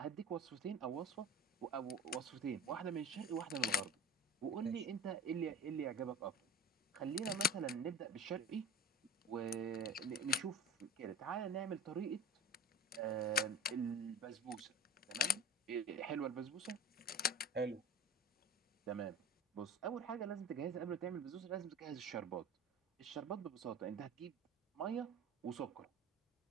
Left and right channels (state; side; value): normal; both; correlation 0.34